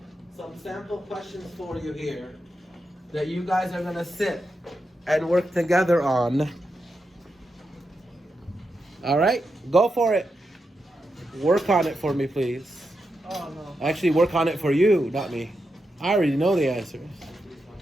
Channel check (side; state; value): both; normal; correlation 0.87